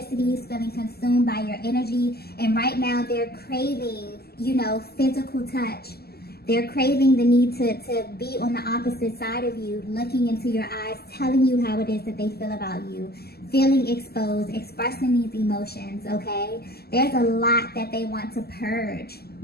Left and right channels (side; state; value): right; late; 0.46 ms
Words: feeling consumed by your energy. And right now they're craving, physical touch. They're craving the need to be on the opposite side of you, looking into your eyes, telling you how it is that they feel about you, feeling exposed, expressing these emotions, okay? There's a lot that they want to purge.